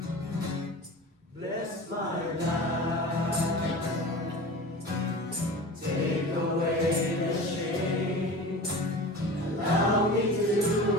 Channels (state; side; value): normal; both; correlation 0.34